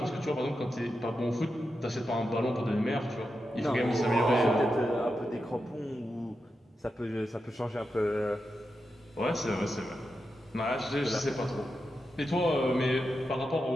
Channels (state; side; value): normal; both; correlation 0.88